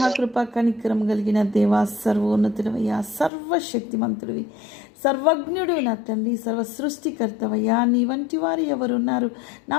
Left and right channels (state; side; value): drops out; right; at 3.3 s